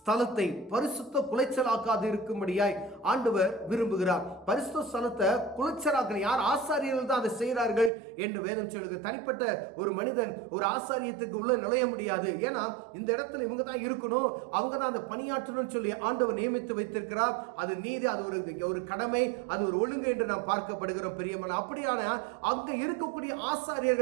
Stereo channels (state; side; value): drops out; left; at 7.9 s